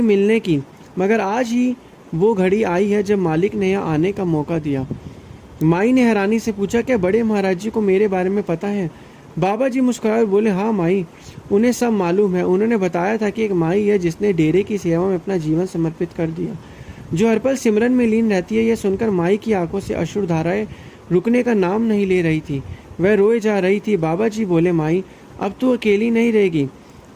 मिलने की, मगर आज ही वो घड़ी आई है जब मालिक ने यहाँ आने का मौका दिया। माई ने हैरानी से पूछा, क्या बड़े महाराज जी को मेरे बारे में पता है? बाबा जी मुस्कुराए बोले, हाँ माई, उन्हें सब मालूम है। उन्होंने बताया था कि एक माई है जिसने डेरे की सेवा में अपना जीवन समर्पित कर दिया, जो हर पल सिमरन में लीन रहती है। यह सुनकर माई की आंखों से अश्रु धाराएं रुकने का नाम नहीं ले रही थी, वह रोए जा रही थी। बाबा जी बोले, माई अब तू अकेली नहीं रहेगी,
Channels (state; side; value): identical; both; correlation 1.00